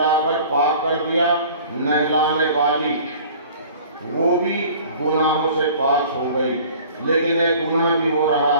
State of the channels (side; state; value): both; inverted; correlation -0.46